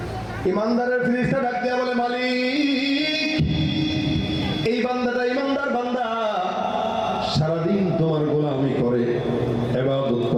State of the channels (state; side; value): identical; both; correlation 1.00